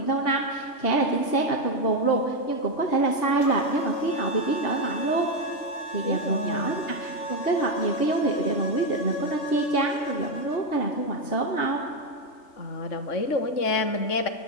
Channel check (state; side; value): late; right; 3.3 ms